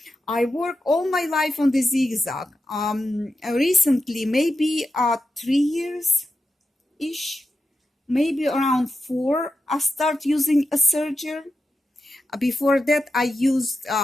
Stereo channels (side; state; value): both; normal; correlation 0.89